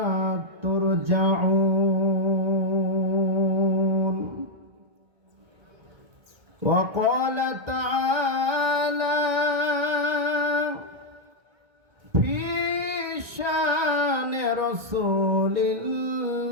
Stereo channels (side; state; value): left; late; 1.9 ms